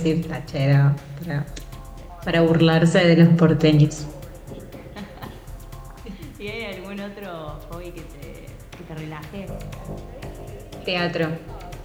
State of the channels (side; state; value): both; identical; correlation 1.00